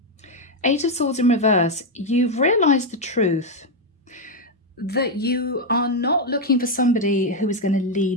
Eight of Swords in reverse. You've realised the truth that you are not looking for somebody who is going to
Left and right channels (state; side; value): normal; both; correlation 0.03